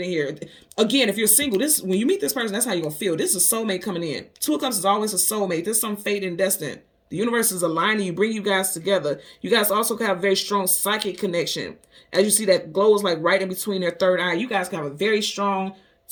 here. Again, if you're single, when you meet this person, that's how you're going to feel. This is a soulmate coming in. Two of Cups is always a soulmate. This is some fate and destiny. The universe is aligning you, bring you guys together. You guys also have a very strong psychic connection. As you see, that glow is like right in between their third eye. You guys can have a very strong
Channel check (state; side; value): identical; both; correlation 1.00